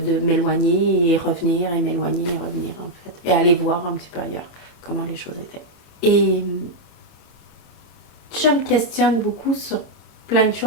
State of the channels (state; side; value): late; right; 33 ms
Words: m'éloigner et revenir, et m'éloigner et revenir, en fait. Et aller voir un petit peu ailleurs comment les choses étaient. Et je me questionne beaucoup sur plein de